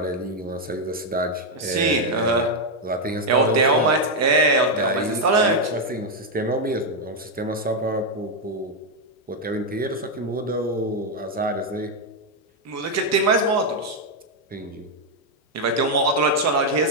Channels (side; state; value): both; normal; correlation 0.02